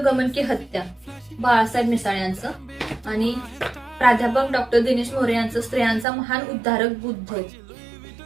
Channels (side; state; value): left; drops out; at 6.1 s